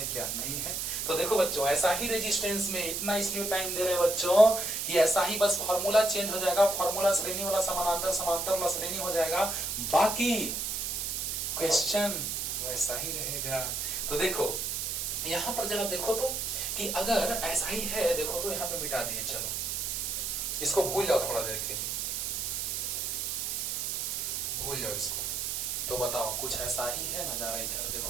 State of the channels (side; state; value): right; noise; hiss, 1 dB below the sound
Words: क्या नहीं है। तो देखो बच्चों, ऐसा ही रेजिस्टेंस में इतना इसलिए टाइम दे रहे हैं बच्चों कि ऐसा ही बस फॉर्मूला चेंज हो जाएगा, फॉर्मूला श्रेणी वाला समानांतर, समांतर वाला श्रेणी हो जाएगा, बाकी क्वेश्चन वैसा ही रहेगा। तो देखो यहाँ पर जरा देखो तो कि अगर ऐसा ही है, देखो तो यहाँ पे मिटा दिए, चलो इसको भूल जाओ थोड़ा देर के लिए, भूल जाओ इसको। तो बताओ कुछ ऐसा ही है नजारा, इधर देखो